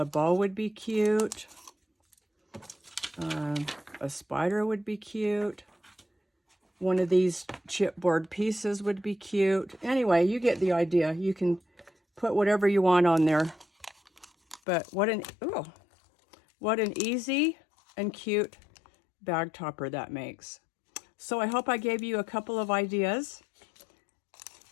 bow would be cute. A spider would be cute. one of these chipboard pieces would be cute. Anyway, you get the idea. You can put whatever you want on there. But what an easy and cute bag topper that makes. So I hope I gave you a couple of ideas.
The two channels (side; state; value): right; drops out; at 14.6 s